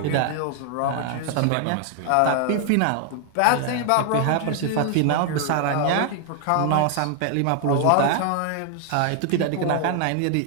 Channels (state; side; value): different; both; correlation 0.00